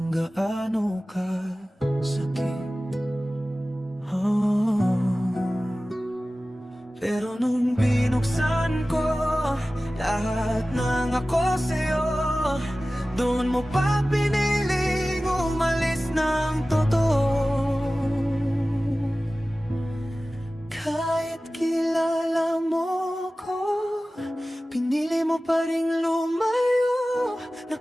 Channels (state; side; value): normal; both; correlation 0.96